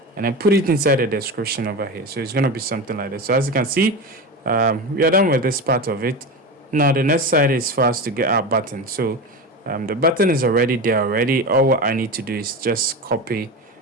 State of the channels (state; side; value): normal; both; correlation 0.24